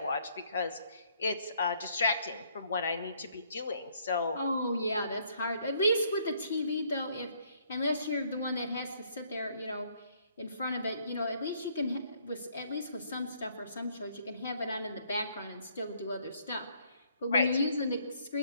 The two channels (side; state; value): both; inverted; correlation -0.66